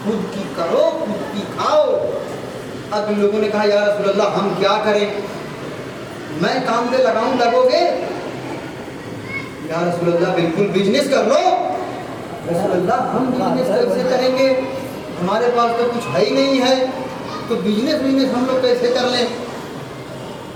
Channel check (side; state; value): both; identical; correlation 1.00